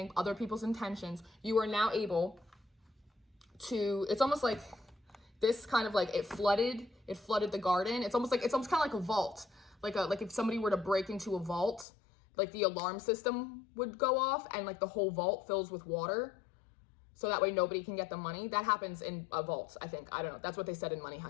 other people's intentions, you are now able to, it's almost like this kind of like it flooded the garden. It's almost kind of like a vault. Like if somebody were to break into a vault, like the alarm system would go off and like the whole vault fills with water. So that way nobody can get the money. That happens in vaults, I think. I don't know. That's what they said in Money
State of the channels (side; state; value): right; drops out; at 11.9 s